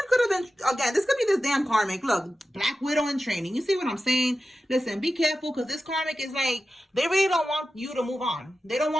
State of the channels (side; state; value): both; normal; correlation 0.93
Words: could have been, again, this could be this damn karmic. Look, Black Widow in training. You see what I'm saying? Listen, be careful, because this karmic is like, they really don't want you to move on. They don't